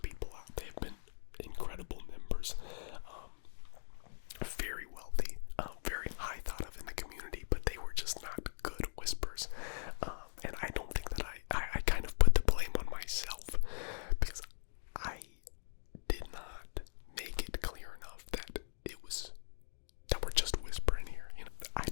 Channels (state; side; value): silent; right; digital silence